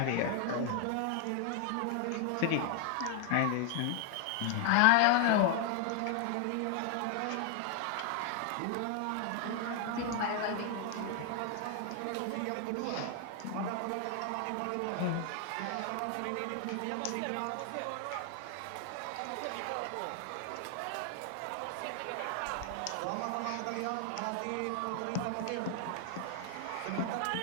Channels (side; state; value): both; different; correlation 0.00